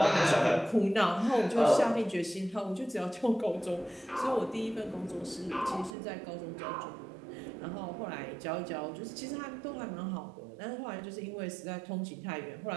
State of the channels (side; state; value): left; drops out; at 6.0 s